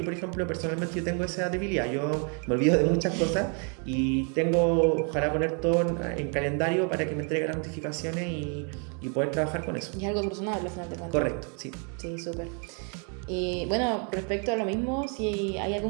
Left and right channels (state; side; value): quieter; left; 38.8 dB